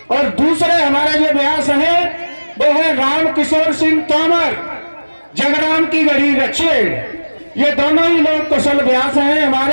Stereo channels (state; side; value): inverted; both; correlation -1.00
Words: और दूसरे हमारे जो व्यास है वो है राम किशोर सिंह तोमर, जगराम की गढ़ी रछेड़। ये दोनों ही लोग कुशल व्यास हैं